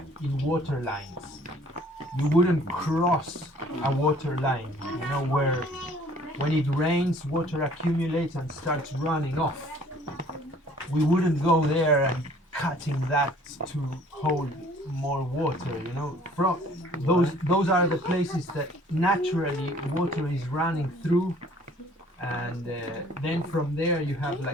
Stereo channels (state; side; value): normal; both; correlation 0.55